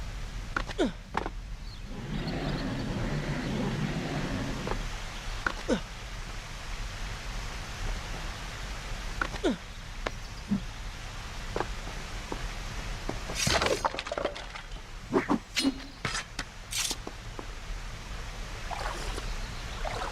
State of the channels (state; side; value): identical; both; correlation 1.00